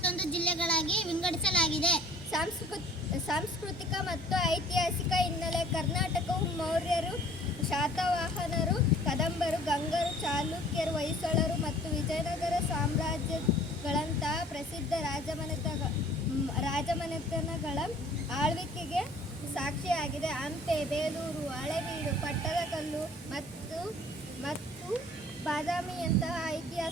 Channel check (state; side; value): normal; both; correlation 0.52